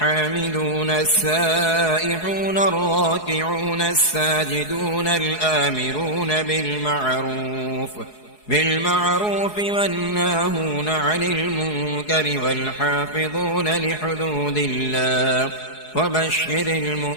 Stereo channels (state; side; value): late; right; 4.7 ms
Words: السائحون الراكعون الساجدون الآمرون بالمعروف والناهون عن المنكر والحافظون لحدود الله وبشر